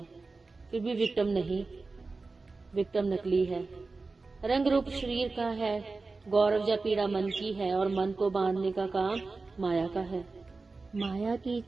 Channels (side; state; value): left; quieter; 3.8 dB